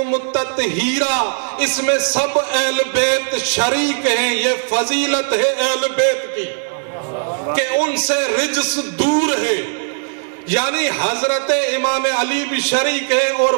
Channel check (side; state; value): left; silent; 61 dB below the other